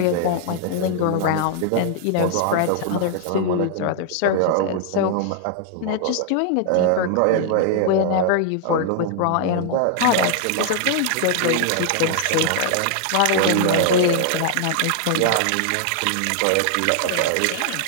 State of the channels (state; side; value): different; both; correlation 0.00